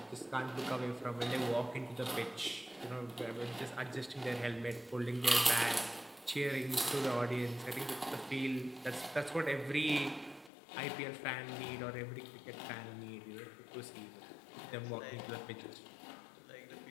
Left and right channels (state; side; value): drops out; right; at 10.5 s